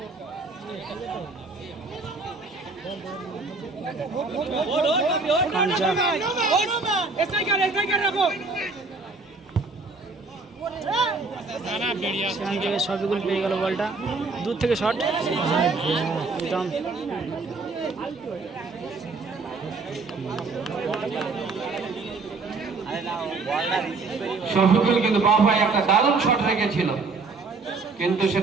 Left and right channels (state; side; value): quieter; left; 3.9 dB